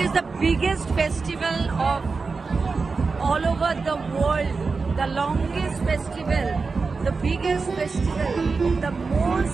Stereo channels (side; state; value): left; quieter; 4.4 dB